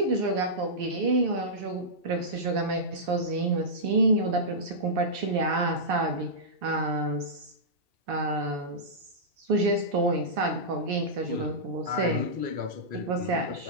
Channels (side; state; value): left; late; 2.6 ms